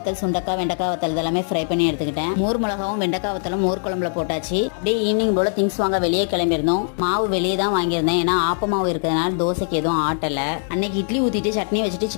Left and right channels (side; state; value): right; silent; digital silence